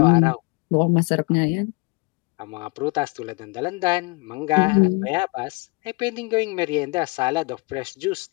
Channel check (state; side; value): quieter; right; 28.2 dB